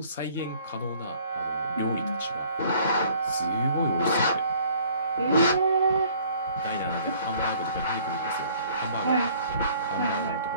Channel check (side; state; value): both; inverted; correlation -0.57